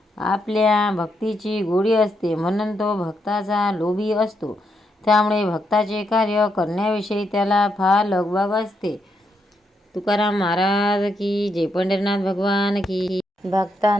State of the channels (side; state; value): both; normal; correlation 0.80